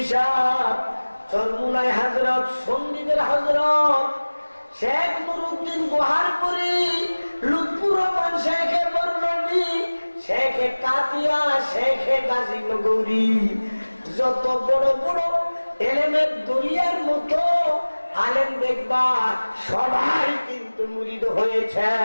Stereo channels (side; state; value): both; inverted; correlation -1.00